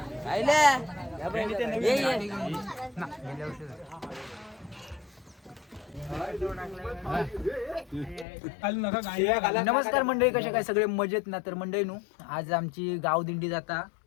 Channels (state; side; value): drops out; right; at 8.2 s